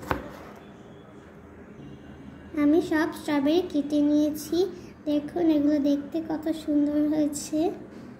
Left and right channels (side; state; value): both; identical; correlation 1.00